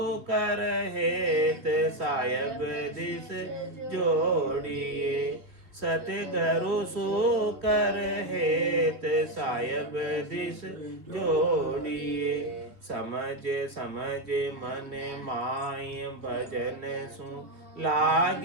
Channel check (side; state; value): left; late; 3.2 ms